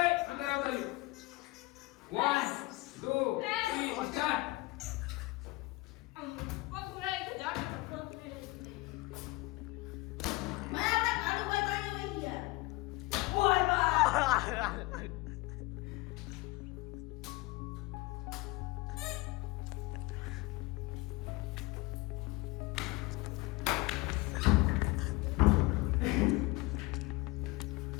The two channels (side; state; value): right; quieter; 22.3 dB